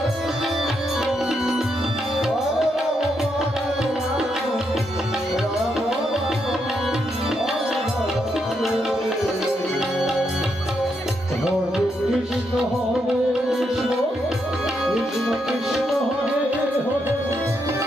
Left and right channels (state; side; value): normal; both; correlation 0.80